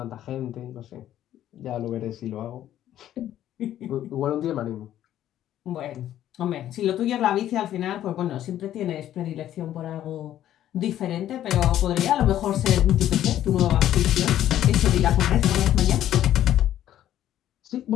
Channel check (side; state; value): right; quieter; 12.0 dB